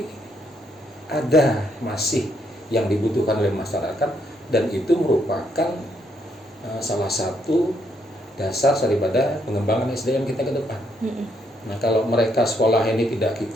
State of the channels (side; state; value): both; normal; correlation 0.74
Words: ada masih yang dibutuhkan oleh masyarakat, dan itu merupakan salah satu dasar daripada pengembangan SDM kita ke depan. Nah kalau mereka sekolah ini tidak